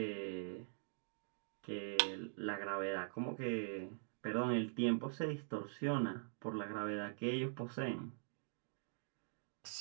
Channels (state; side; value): silent; left; digital silence